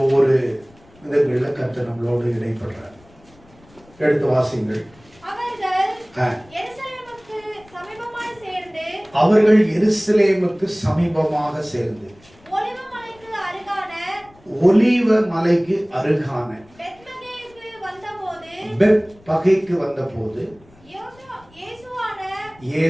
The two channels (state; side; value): noise; left; rumble, 27 dB below the sound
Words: ஒவ்வொரு விதங்களில் கர்த்தர் நம்மளோடு இடைப்படுறார். எடுத்து வாசிங்கள். அவர்கள் எருசலேமுக்கு சமீபமாக சேர்ந்து ஒலிவ மலைக்கு அருகான பெத்பகேக்கு வந்தபோது